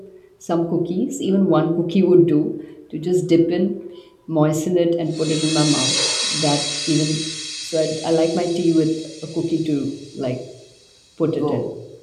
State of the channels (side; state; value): both; identical; correlation 1.00